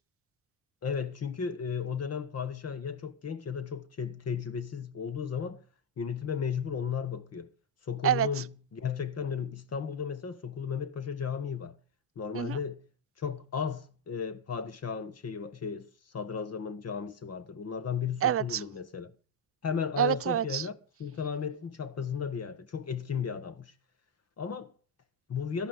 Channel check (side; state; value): both; normal; correlation 0.04